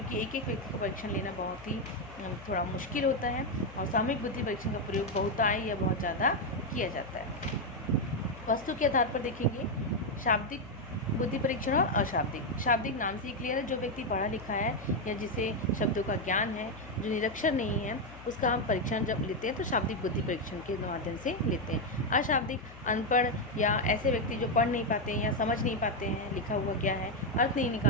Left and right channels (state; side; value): noise; left; hum, 18 dB below the sound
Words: एक एक व्यक्ति को परीक्षण लेना बहुत ही थोड़ा मुश्किल होता है। और सामूहिक बुद्धि परीक्षण का प्रयोग बहुतायत या बहुत ज़्यादा किया जाता है। वस्तु के आधार पर देखेंगे शाब्दिक बुद्धि परीक्षण और अशाब्दिक। शाब्दिक नाम से ही क्लियर है, जो व्यक्ति पढ़ा लिखा है या जिसे शब्दों का ज्ञान है, जो निरक्षर नहीं है, उसका हम परीक्षण जब लेते हैं तो शाब्दिक बुद्धि परीक्षण के माध्यम से लेते हैं। अशाब्दिक अनपढ़ या ऐसे व्यक्ति जो पढ़ नहीं पाते हैं या समझ नहीं पाते हैं लिखा हुआ क्या है, अर्थ नहीं